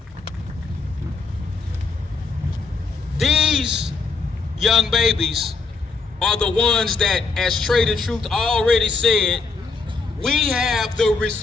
These young babies are the ones that, as Trader Truth already said, we have the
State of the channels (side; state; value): right; quieter; 4.3 dB